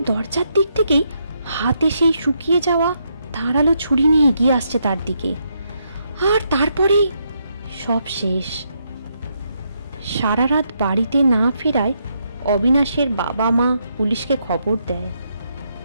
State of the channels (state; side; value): inverted; both; correlation -0.78